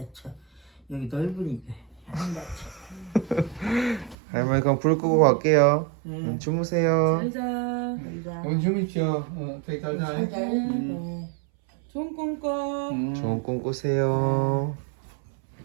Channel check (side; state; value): left; drops out; at 4.2 s